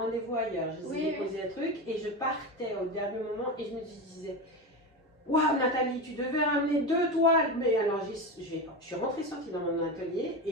ailleurs. Je ai déposé un truc et je partais au dernier moment et je me disais, waouh Nathalie, tu devais ramener 2 toiles. Mais alors, je suis rentrée sortie dans mon atelier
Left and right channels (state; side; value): normal; both; correlation 0.20